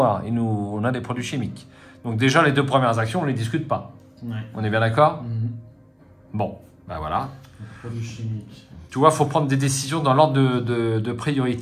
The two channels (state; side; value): identical; both; correlation 1.00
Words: et nous, on a des produits chimiques. Donc déjà, les 2 premières actions, on ne les discute pas. Ouais. On est bien d'accord? Mhm. Bon, ben voilà. Produits chimiques. Tu vois, il faut prendre des décisions dans l'ordre de